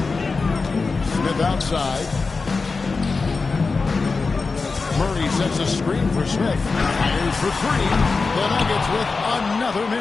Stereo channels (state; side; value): quieter; right; 4.3 dB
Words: Smith outside. Murray sets a screen for Smith. Fires for 3. The Nuggets with another